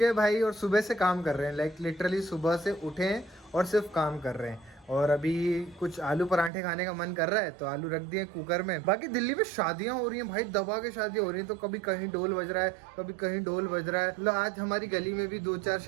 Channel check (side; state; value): left; drops out; at 6.5 s